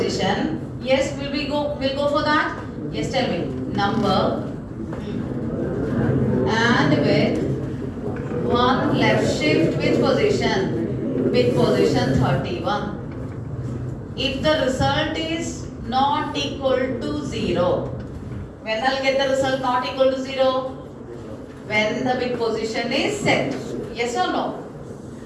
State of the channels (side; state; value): both; identical; correlation 1.00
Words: Yes, will go for that? Yes, tell me. Number and with one left shift bit position 31. If the result is not equal to 0, when I'll get the result not equal to 0? When the bit position is set. Yes or no?